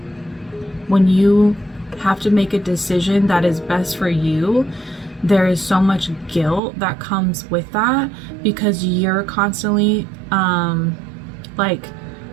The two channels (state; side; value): drops out; left; at 6.6 s